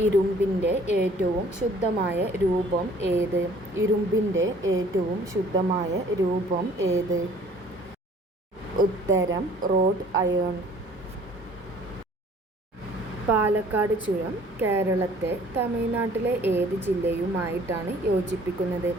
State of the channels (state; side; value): normal; both; correlation 0.53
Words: ഇരുമ്പിൻ്റെ ഏറ്റവും ശുദ്ധമായ രൂപം ഏത്? ഇരുമ്പിൻ്റെ ഏറ്റവും ശുദ്ധമായ രൂപം ഏത്? ഉത്തരം റോഡ് അയേൺ. പാലക്കാട് ചുരം കേരളത്തെ തമിഴ്നാട്ടിലെ ഏത് ജില്ലയുമായിട്ടാണ് യോജിപ്പിക്കുന്നത്?